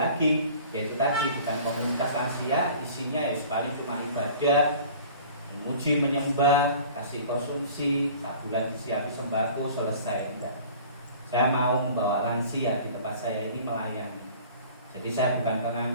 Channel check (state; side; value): inverted; both; correlation -0.46